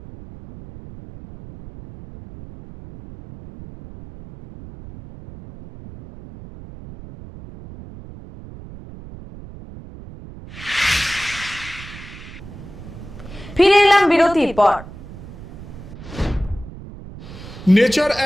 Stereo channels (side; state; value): right; noise; rumble, 15 dB below the sound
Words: ফিরে এলাম বিরতির পর। Nature